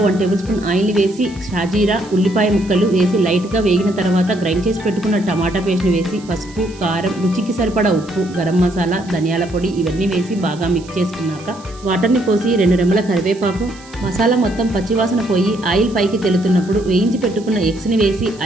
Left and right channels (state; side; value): noise; right; hiss, 22 dB below the sound